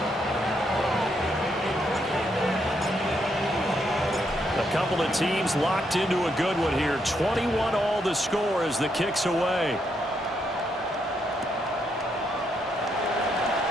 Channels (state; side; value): normal; both; correlation 0.77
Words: A couple of teams locked into a good one here. 21 all the score as the kick's away.